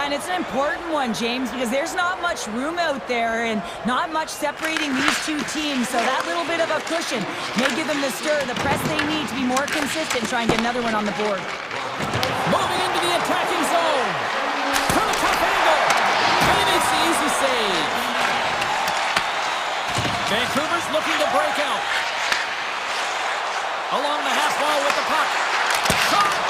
and it's an important one, James, because there's not much room out there and not much separating these two teams, so that little bit of a cushion may give them the stir, the press they need to be more consistent, try and get another one on the board. Moving into the attacking zone. From a tough angle. And he makes the easy save. Vancouver's looking to break out. Along the half wall with the puck. Shot!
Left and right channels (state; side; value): identical; both; correlation 1.00